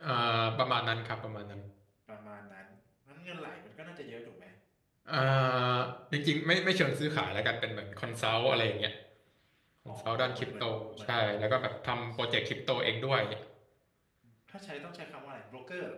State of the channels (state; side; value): identical; both; correlation 1.00